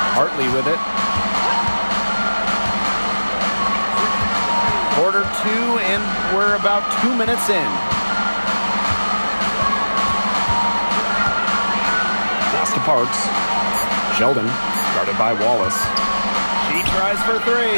Hartley with it. Quarter 2, and we're about 2 minutes in. Pass to Parks. Sheldon, guarded by Wallace. She tries for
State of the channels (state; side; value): inverted; both; correlation -1.00